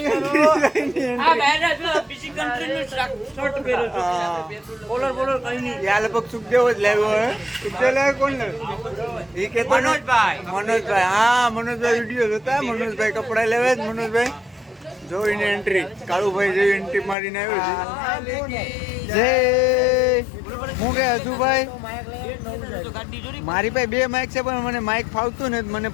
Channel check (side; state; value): right; drops out; at 17.2 s